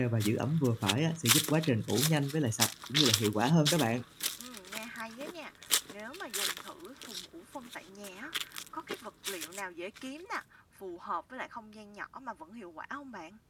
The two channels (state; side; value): identical; both; correlation 1.00